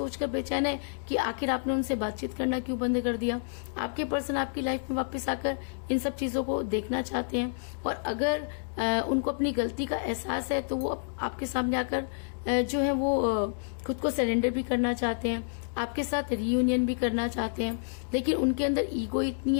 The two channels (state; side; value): silent; right; digital silence